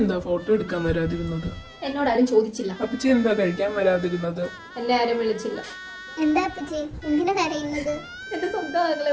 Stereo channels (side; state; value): both; identical; correlation 1.00